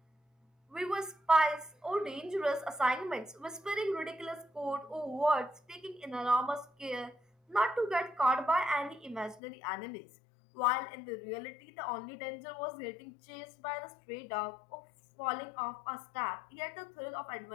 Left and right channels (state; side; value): drops out; right; at 9.4 s